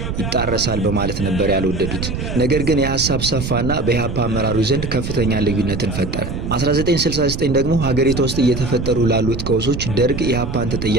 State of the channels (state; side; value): noise; right; rumble, 5 dB below the sound